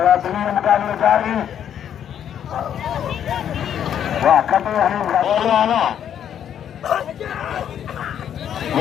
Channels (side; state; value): right; quieter; 9.4 dB